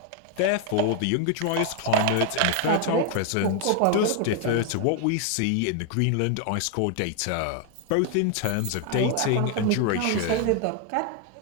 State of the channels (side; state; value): both; different; correlation 0.00